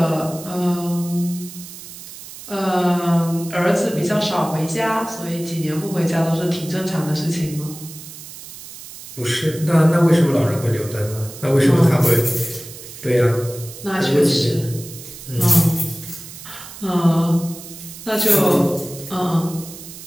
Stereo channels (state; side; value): noise; right; hiss, 14 dB below the sound